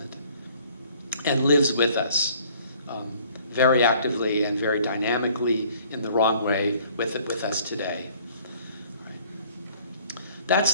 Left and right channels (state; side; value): inverted; both; correlation -0.57